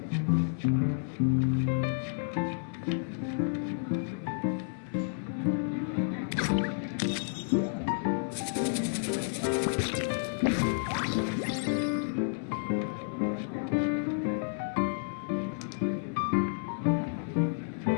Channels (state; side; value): silent; right; 57 dB below the other